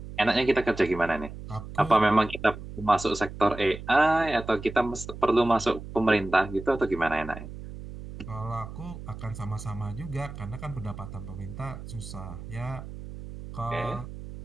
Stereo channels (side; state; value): right; noise; hum, 12 dB below the sound